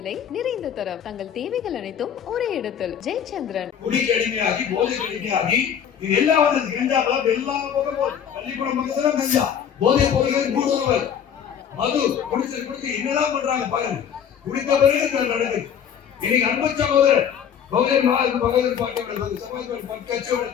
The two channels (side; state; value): right; quieter; 8.3 dB